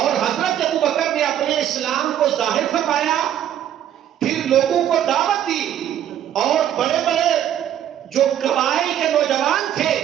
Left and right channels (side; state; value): left; quieter; 10.8 dB